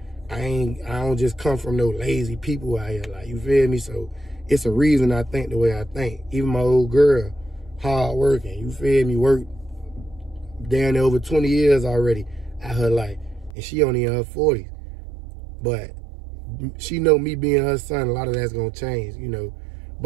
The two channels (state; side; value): drops out; left; at 13.6 s